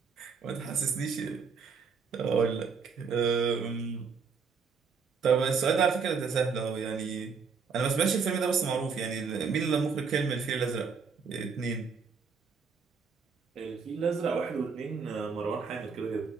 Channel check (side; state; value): left; quieter; 5.6 dB